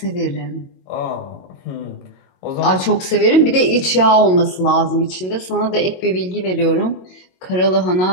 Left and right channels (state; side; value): late; right; 22 ms